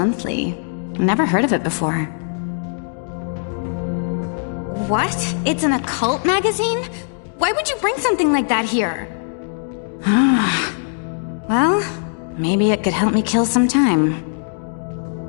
Never heard of it before. What? It's an occult magazine? Why would you bring something like that here? Well, maybe it could help me kill some time.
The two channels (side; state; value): right; silent; digital silence